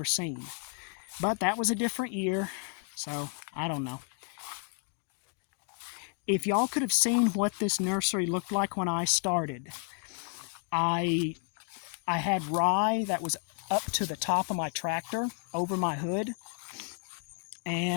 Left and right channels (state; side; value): quieter; right; 39.1 dB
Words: seen. But that was a different year, so I don't know. If y'all could have seen what this nursery looked like when I started, I had rye that was up to the top of my tractor, over my hood,